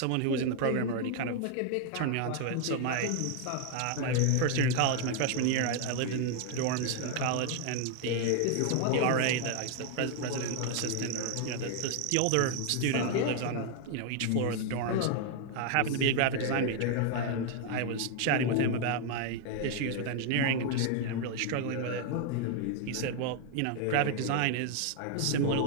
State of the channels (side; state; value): both; different; correlation 0.00